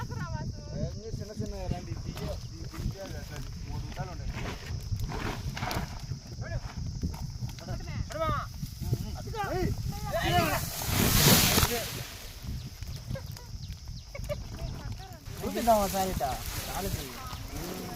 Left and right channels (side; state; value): both; identical; correlation 1.00